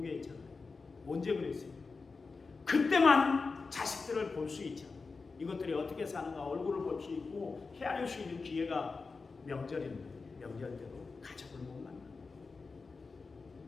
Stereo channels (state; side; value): quieter; right; 4.3 dB